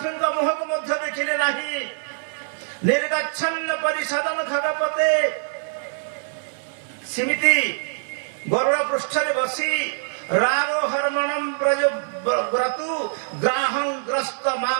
ମୁହଁକୁ ମଧ୍ୟ ଦେଖିଲେ ନାହିଁ। ନିର୍ଗଚ୍ଛନ୍ନ ପରିଷଦନ ଖଗପତେ ସେମିତି ଗରୁଡ଼ ପୃଷ୍ଠରେ ବସି ରାରୋ ହରମଣಂ ବ୍ରଜ ବ୍ରତୁ ଗ୍ରାହଂ ଗ୍ରସ୍ତ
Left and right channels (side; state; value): left; silent; digital silence